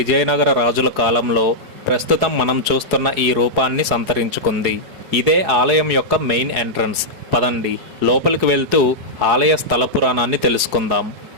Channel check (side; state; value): left; late; 4.8 ms